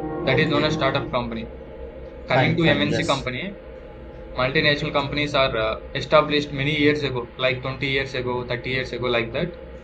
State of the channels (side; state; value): both; identical; correlation 1.00